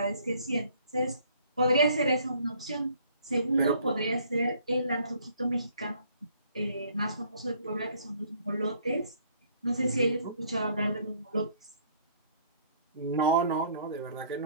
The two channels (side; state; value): both; inverted; correlation -0.61